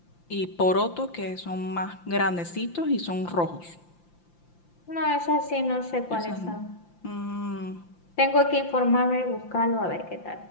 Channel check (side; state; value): right; late; 5.8 ms